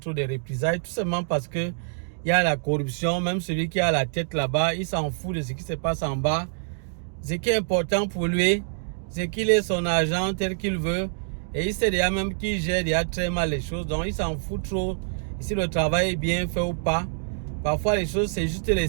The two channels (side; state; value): left; silent; digital silence